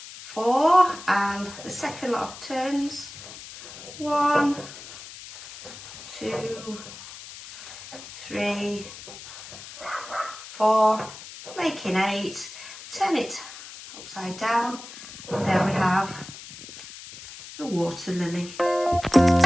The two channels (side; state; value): left; noise; hiss, 14 dB below the sound